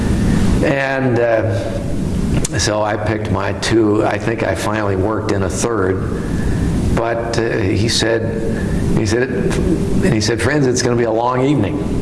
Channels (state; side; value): identical; both; correlation 1.00